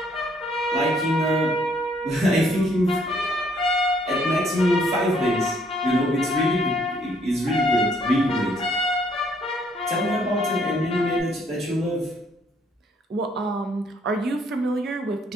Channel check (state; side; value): normal; both; correlation 0.66